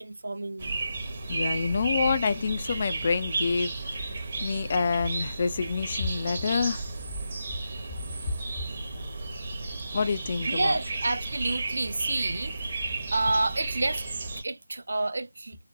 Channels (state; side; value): inverted; both; correlation -0.87